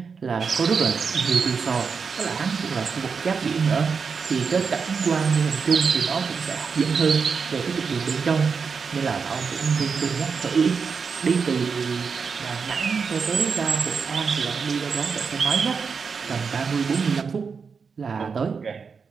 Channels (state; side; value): quieter; left; 5.6 dB